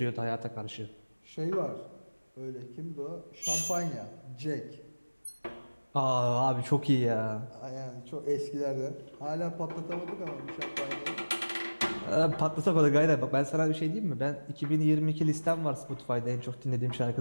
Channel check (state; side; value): inverted; both; correlation -1.00